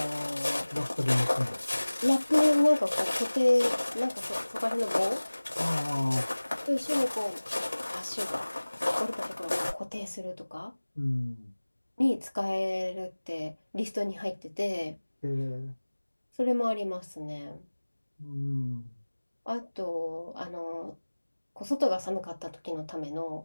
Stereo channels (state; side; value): inverted; both; correlation -1.00